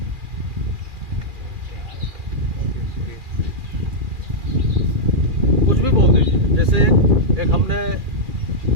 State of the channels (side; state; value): left; late; 2.4 ms